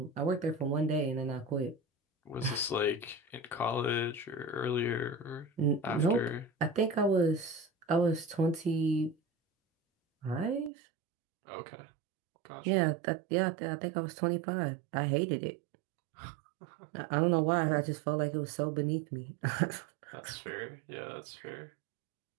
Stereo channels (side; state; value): left; drops out; at 10.7 s